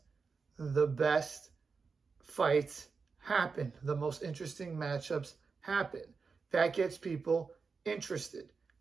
best fights happen. The most interesting matchups happen. That gets people interested.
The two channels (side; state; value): left; quieter; 4.9 dB